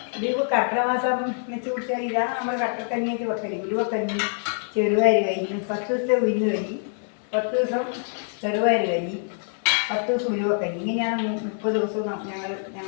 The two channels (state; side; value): silent; right; 62 dB below the other